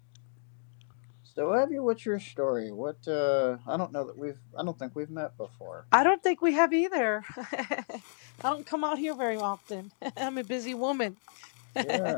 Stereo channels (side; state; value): right; silent; digital silence